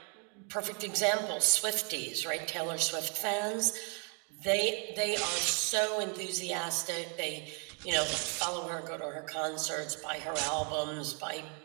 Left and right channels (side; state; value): left; quieter; 37.5 dB